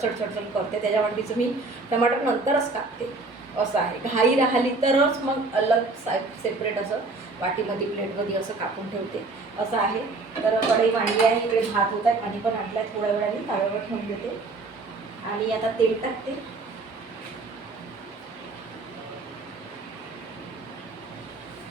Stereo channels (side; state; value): left; quieter; 3.5 dB